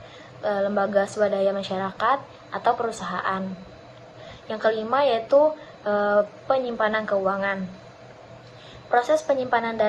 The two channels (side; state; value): both; identical; correlation 1.00